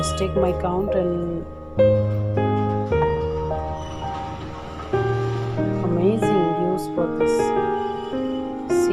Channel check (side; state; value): both; identical; correlation 1.00